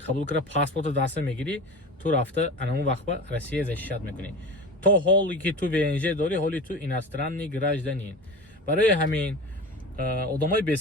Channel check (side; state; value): both; normal; correlation 0.32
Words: кара паспорта даста мегири, ту рафта анамун вақт ба Россия защищат мекунӣ. То ҳоли ки ту ВНЖ дори, ҳоли ту иностранный гражданин. Барои ҳамин одамои